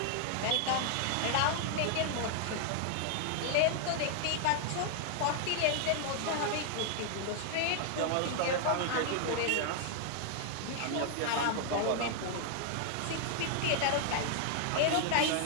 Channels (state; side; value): different; both; correlation 0.00